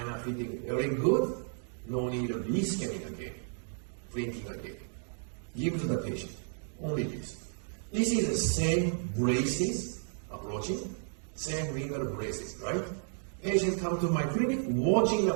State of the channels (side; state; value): left; silent; digital silence